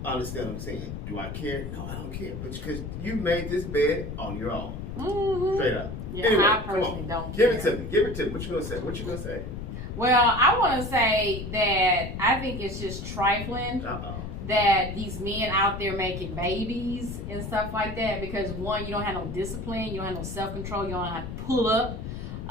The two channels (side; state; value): left; noise; rumble, 7 dB below the sound